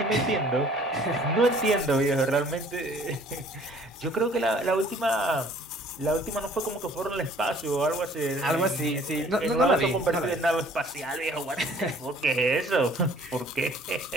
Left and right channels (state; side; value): normal; both; correlation 0.55